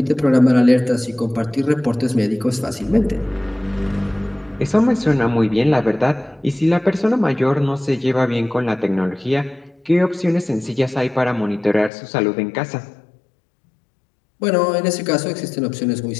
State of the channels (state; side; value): drops out; right; at 11.9 s